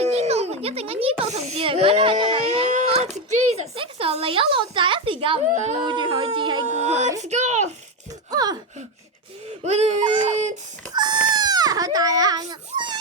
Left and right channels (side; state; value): both; normal; correlation 0.11